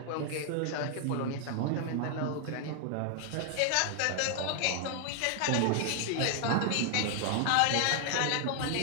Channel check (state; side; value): different; both; correlation 0.00